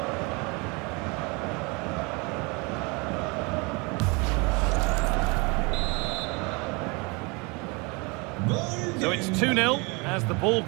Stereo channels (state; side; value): quieter; left; 28.7 dB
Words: So it's 2-0 as the ball